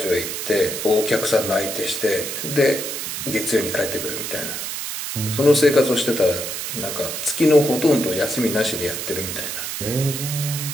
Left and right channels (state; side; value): noise; right; hiss, 5 dB below the sound